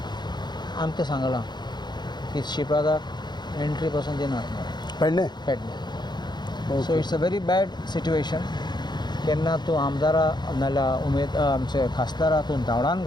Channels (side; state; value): right; late; 0.21 ms